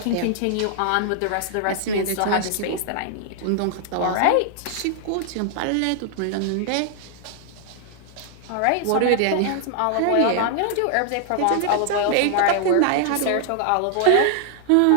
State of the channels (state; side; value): different; both; correlation 0.00